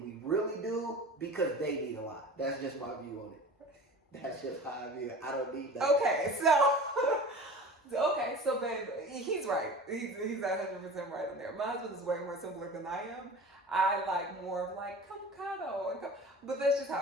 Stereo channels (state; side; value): normal; both; correlation 0.38